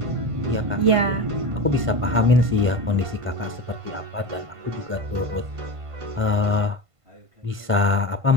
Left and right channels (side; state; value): left; late; 1.5 ms